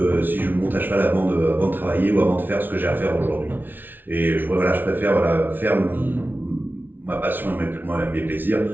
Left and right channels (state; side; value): late; left; 0.092 ms